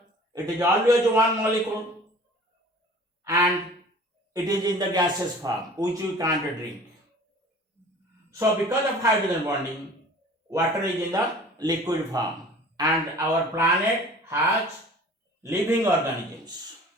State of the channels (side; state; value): both; normal; correlation 0.45